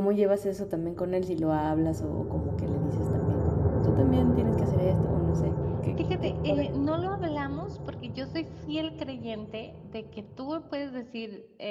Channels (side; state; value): both; identical; correlation 1.00